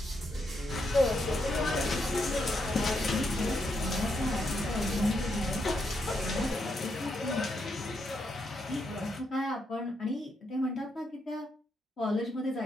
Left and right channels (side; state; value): both; normal; correlation 0.80